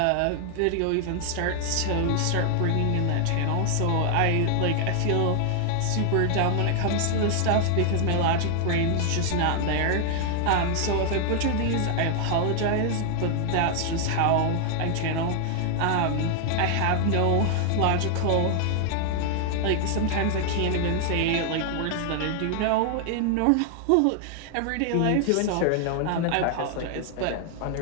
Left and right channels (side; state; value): both; different; correlation 0.00